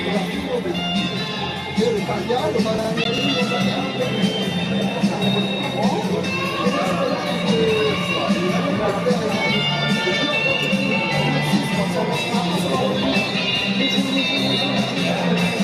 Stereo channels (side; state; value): both; identical; correlation 1.00